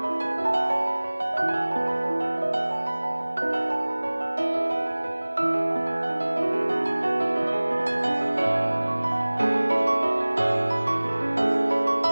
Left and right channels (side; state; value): both; inverted; correlation -1.00